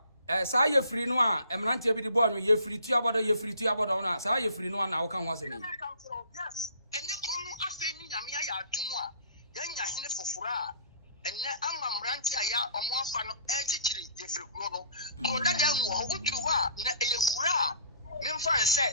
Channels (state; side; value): inverted; both; correlation -0.53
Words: sa Jeffrey no a emrante bi di bo anwo Jeffrey tuabodo na sa Jeffrey no na wo kan ho asemi ene kono afeni nyame ya atumu a yanya hene fofora ene amamrante aya omo afa no echichiri Jeffrey kuro no ko dada nwo ho uduru ho a na eyekura memfa